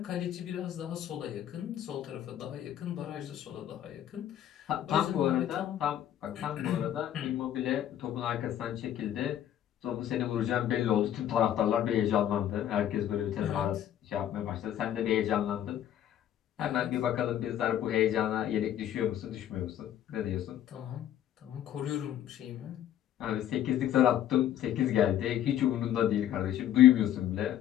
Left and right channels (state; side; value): quieter; right; 11.2 dB